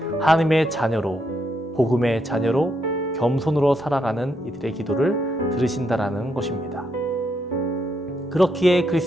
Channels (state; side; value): normal; both; correlation 0.78